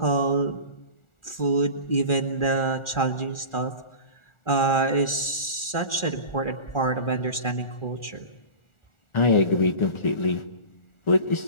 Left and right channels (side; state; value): right; late; 1.4 ms